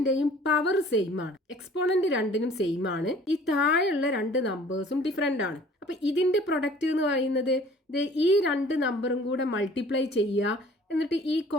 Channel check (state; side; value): normal; both; correlation 0.51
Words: പവർ സെയിം ആണ്. എക്സ്പോണന്റ് രണ്ടിനും സെയിം ആണ്. ഈ താഴെയുള്ള 2 നമ്പേഴ്സും ഡിഫറെന്റ് ആണ്. അപ്പൊ ഇതിന്റെ പ്രൊഡക്റ്റ് എന്ന് പറയുന്നത് ഈ 2 നമ്പറും കൂടെ മൾട്ടിപ്ലൈ ചെയ്യുക, എന്നിട്ട് ഈ